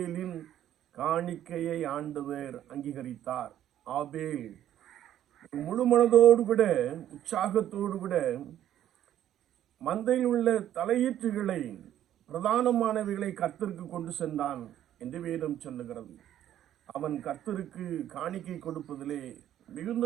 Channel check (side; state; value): left; quieter; 11.5 dB